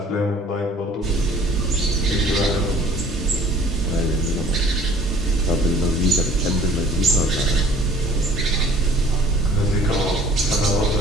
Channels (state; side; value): normal; both; correlation 0.53